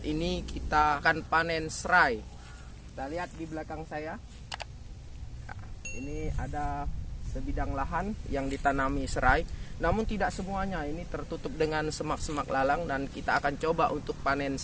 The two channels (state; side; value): identical; both; correlation 1.00